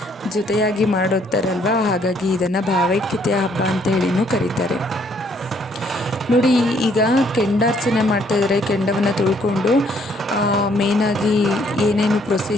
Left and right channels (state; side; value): normal; both; correlation 0.66